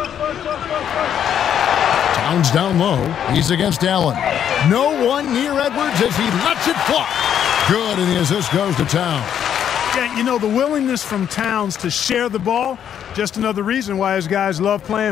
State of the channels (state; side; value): quieter; right; 9.3 dB